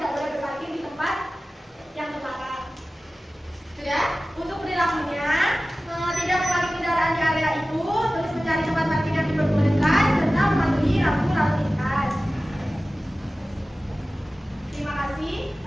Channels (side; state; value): both; normal; correlation 0.96